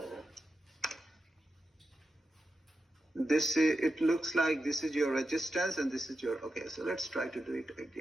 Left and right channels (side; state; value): both; normal; correlation 0.90